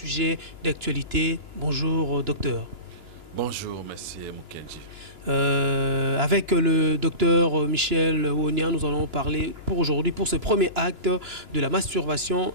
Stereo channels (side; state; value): left; late; 2.9 ms